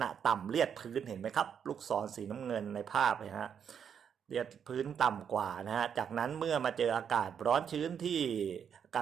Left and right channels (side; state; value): left; quieter; 7.8 dB